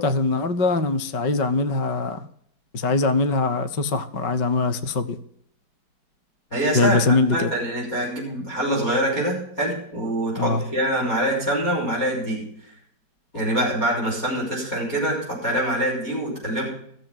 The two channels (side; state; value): right; late; 5.2 ms